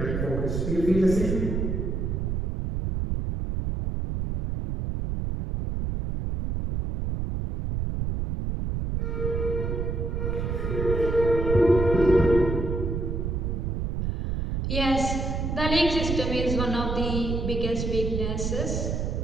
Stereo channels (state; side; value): noise; right; rumble, 1 dB below the sound